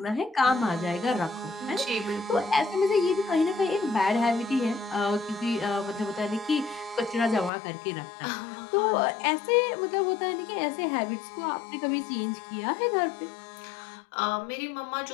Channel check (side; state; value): right; drops out; at 7.5 s